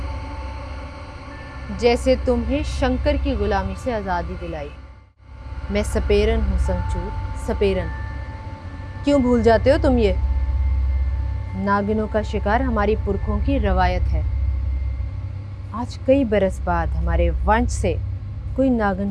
जैसे तुम्हें शंकर की गुलामी से आज़ादी दिलाई। मैं सपेरन हूँ संचूर, सपेरन। क्यों भूल जाते हो तुम ये? नागिनों का शिकार हमारी पुरखों की रवायत है। आज कई बरस बाद हमारे वंश से कोई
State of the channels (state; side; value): identical; both; correlation 1.00